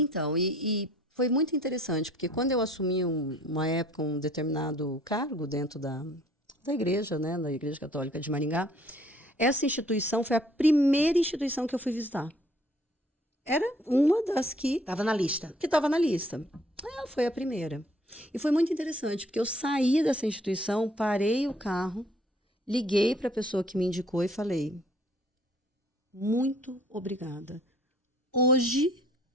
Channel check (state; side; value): normal; both; correlation 0.58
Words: e foi muito interessante, porque quando eu assumi uma época um determinado cargo dentro da igreja, né, da Igreja Católica de Maringá, essa instituição foi a primeira instituição que eu fui visitar. Era uma das que Estava na lista. estava na lista. Ela foi a primeira. E foi muito interessante, porque eu saí dessa instituição, parei o carro, liguei para a pessoa que me indicou e falei: muito obrigada. Hoje